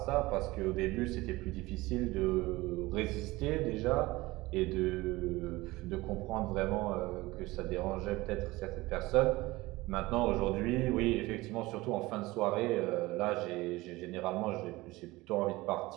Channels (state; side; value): quieter; left; 20.3 dB